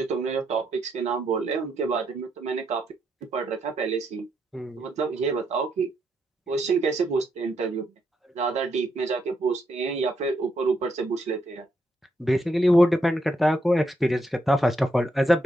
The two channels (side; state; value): both; normal; correlation 0.78